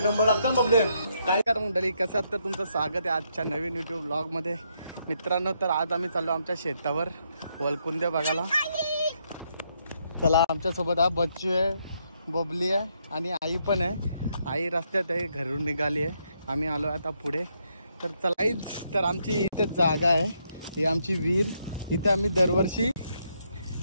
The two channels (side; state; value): both; inverted; correlation -0.76